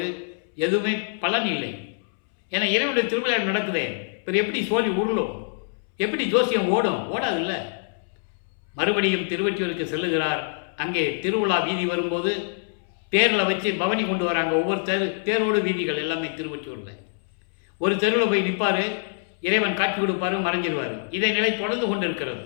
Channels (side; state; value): right; silent; 62 dB below the other